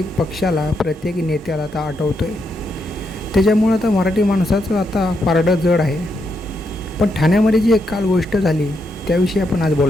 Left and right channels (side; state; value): both; normal; correlation 0.80